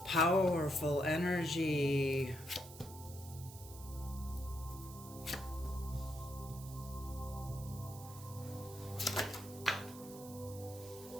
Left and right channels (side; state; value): right; noise; hiss, 16 dB below the sound